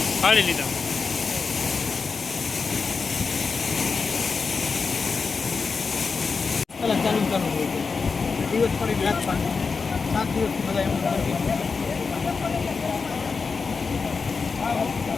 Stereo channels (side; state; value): right; quieter; 4.8 dB